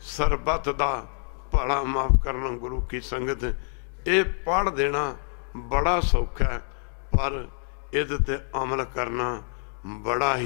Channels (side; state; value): right; silent; 56 dB below the other